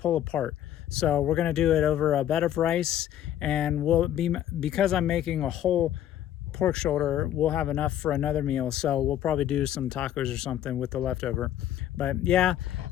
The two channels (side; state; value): right; quieter; 11.4 dB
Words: apart. So we're gonna do it over a bed of rice, and because I'm making a whole pork shoulder, we'll have enough for another meal. So we'll probably do some tacos or something with the leftover. But yeah,